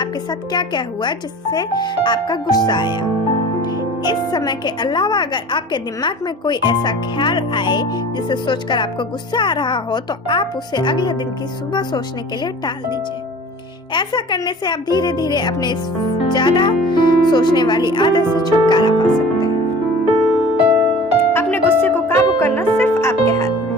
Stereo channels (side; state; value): both; normal; correlation 0.43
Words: साथ क्या क्या हुआ जिससे आपका गुस्सा आया। इस समय के अलावा अगर आपके दिमाग में कोई ऐसा ख्याल आए जिसे सोचकर आपको गुस्सा आ रहा हो तो आप उसे अगले दिन की सुबह सोचने के लिए टाल दीजिए। ऐसा करने से आप धीरे धीरे अपने इस ज्यादा सोचने वाली आदत से छुटकारा पा सकते हैं। अपने गुस्से को काबू करना सिर्फ आपके हाथ में